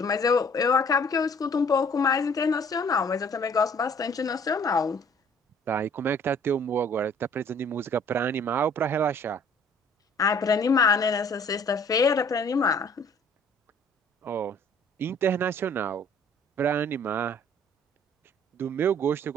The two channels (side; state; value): both; normal; correlation 0.55